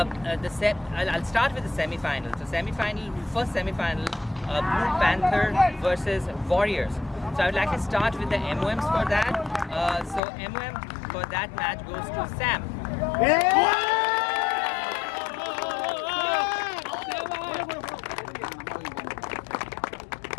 start with the semi-final. So first semi-final. Blue Panther versus Warriors. So I would like to start with the MOMs for that. So MOM for that match goes to Sam. Okay.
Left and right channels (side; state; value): right; drops out; at 10.2 s